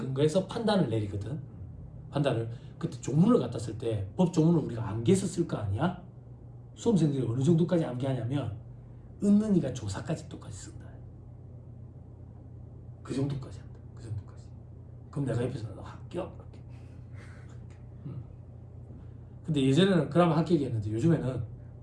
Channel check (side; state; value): both; identical; correlation 1.00